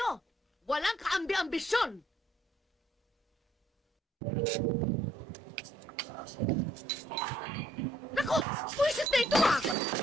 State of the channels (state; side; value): normal; both; correlation 0.67